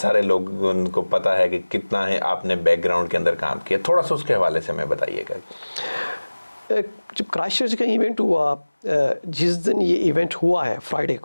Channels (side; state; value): both; inverted; correlation -1.00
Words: सारे लोगों को पता है कि कितना है आपने बैकग्राउंड के अंदर काम किया। थोड़ा सा उसके हवाले से हमें बताइएगा। जब क्राइस्टचर्च का इवेंट हुआ, जिस दिन ये इवेंट हुआ है फ्राइडे